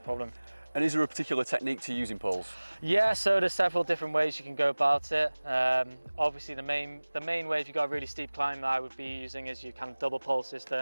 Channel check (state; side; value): inverted; both; correlation -1.00